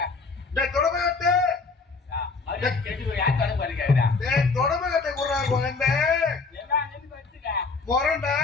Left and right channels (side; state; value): right; quieter; 4.3 dB